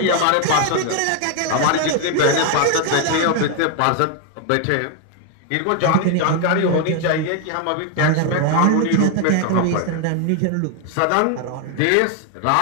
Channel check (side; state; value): both; different; correlation 0.00